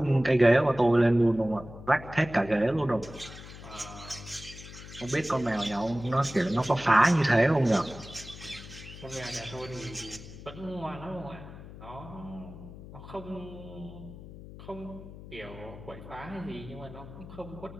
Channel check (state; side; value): noise; left; hum, 15 dB below the sound